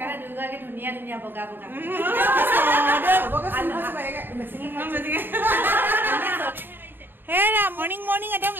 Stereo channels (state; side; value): late; left; 0.095 ms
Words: দুয়োগৰাকী ধুনীয়া ধুনীয়া বগা বগা হেৰা মৰ্ণিং মৰ্ণিং একদম